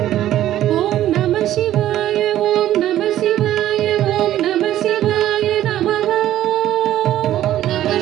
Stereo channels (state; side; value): quieter; left; 12.8 dB